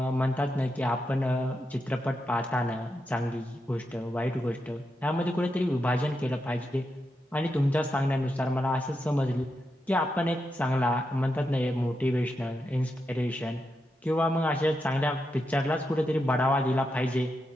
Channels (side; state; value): both; normal; correlation 0.85